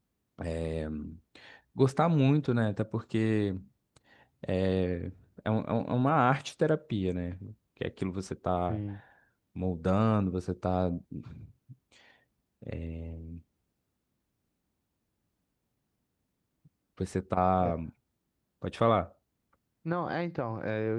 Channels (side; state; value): both; identical; correlation 1.00